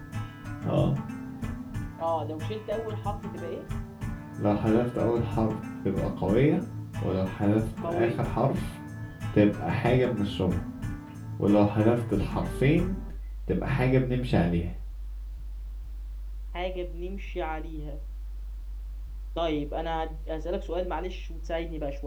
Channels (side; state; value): both; identical; correlation 1.00